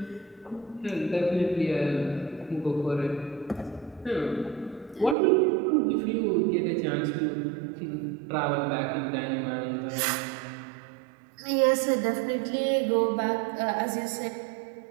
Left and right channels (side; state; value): left; drops out; at 5.2 s